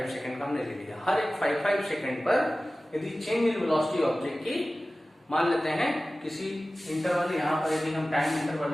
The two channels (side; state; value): both; normal; correlation 0.96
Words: सेकंड का हमने ले लिया, हर एक 5-5 सेकंड पर यदि चेंज इन वेलोसिटी ऑब्जेक्ट की, मान लेते हैं किसी इंटरवल, यहाँ पर यदि हम टाइम इंटरवल